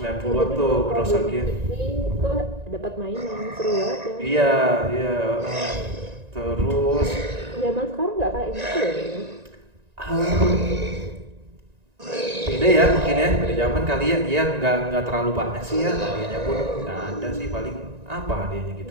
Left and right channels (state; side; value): late; left; 1.9 ms